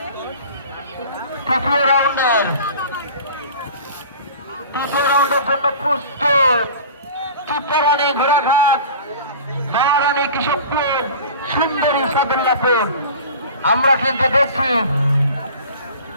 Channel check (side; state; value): both; inverted; correlation -0.40